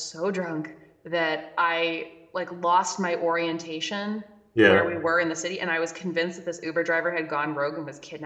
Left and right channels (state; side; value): identical; both; correlation 1.00